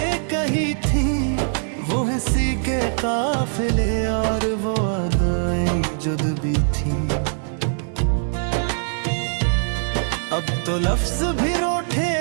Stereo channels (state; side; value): silent; left; 64 dB below the other